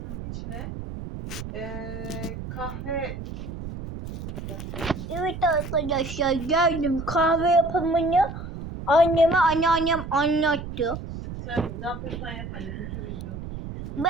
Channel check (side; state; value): right; noise; rumble, 9 dB below the sound